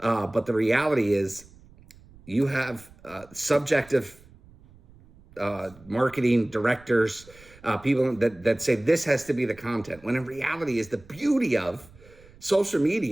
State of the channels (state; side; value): noise; right; rumble, 24 dB below the sound